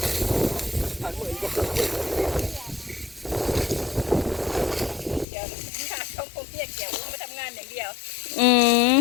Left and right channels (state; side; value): drops out; right; at 5.2 s